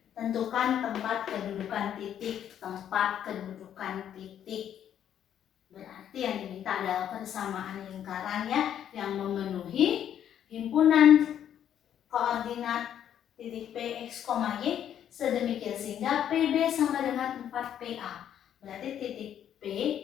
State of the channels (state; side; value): quieter; right; 9.9 dB